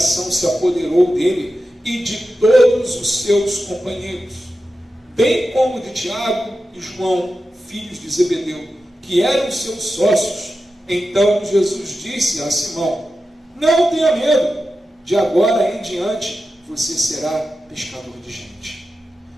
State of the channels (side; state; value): both; normal; correlation 0.92